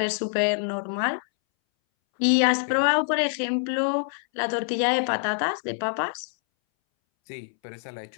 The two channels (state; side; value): silent; right; 61 dB below the other